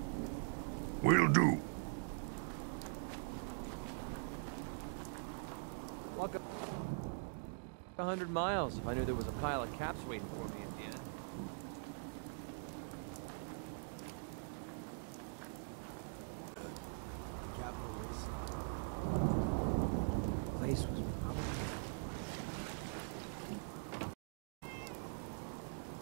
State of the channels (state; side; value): silent; left; digital silence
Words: Will do. Walk 100 miles if I knew there was a pile of caps waiting for me at the end. The capital place was